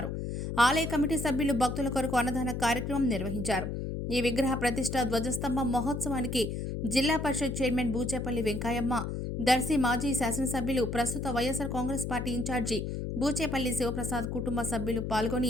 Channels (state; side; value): noise; left; hum, 4 dB below the sound